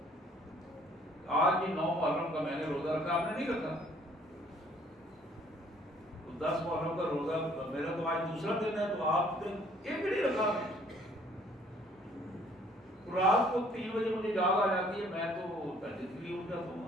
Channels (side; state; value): both; normal; correlation 0.59